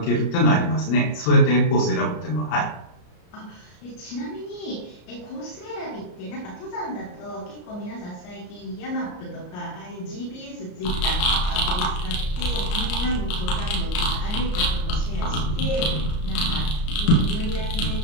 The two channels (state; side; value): late; right; 33 ms